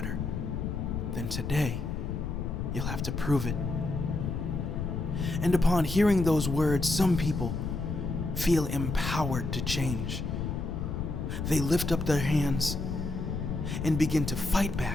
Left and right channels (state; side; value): noise; left; rumble, 3 dB below the sound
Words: then today you'll have to prove it. And upon hearing those words, some people feel empowered to change. They lift up their hands and begin to fight